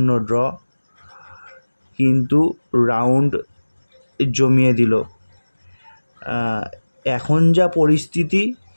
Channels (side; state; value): both; inverted; correlation -1.00